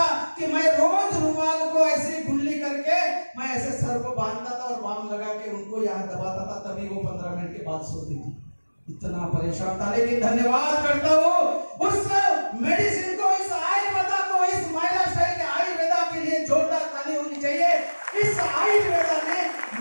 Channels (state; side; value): inverted; both; correlation -1.00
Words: कि मैं रोज रुमाल को ऐसे गुल्ली करके मैं ऐसे सर को बांधता था और बाम लगा के उनको यहाँ दबाता था, तभी वो 15 मिनट के बाद सोती थी। इतना परेशान था। लेकिन धन्यवाद करता हूँ उस मेडिसिन को, इस आयुर्वेदा को, इस महिला स्टाइल के आयुर्वेदा के लिए जोरदार ताली होनी चाहिए। इस आयुर्वेदा ने